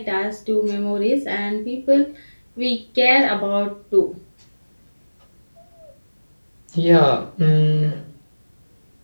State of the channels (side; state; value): both; inverted; correlation -1.00